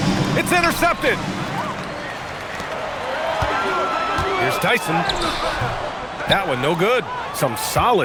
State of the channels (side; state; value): both; identical; correlation 1.00